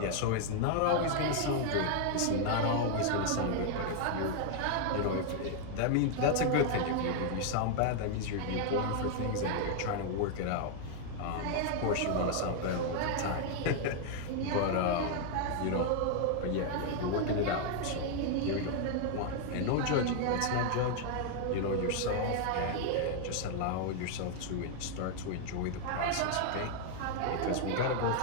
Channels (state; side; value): different; both; correlation 0.00